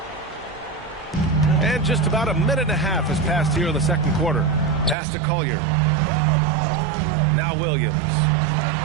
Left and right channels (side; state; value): left; drops out; at 5.0 s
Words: And just about a minute and a half has passed here in the second quarter. Pass to Collier. Now Williams.